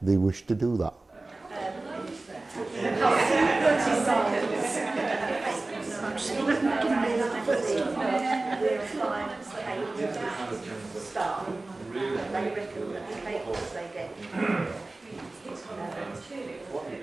they wish to do that.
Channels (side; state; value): left; quieter; 3.1 dB